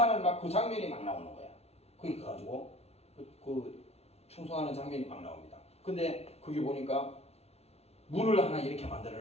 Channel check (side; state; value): right; late; 0.30 ms